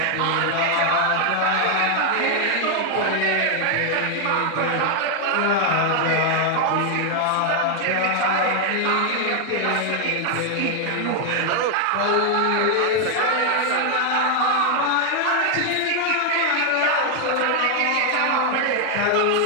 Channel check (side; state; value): both; different; correlation 0.00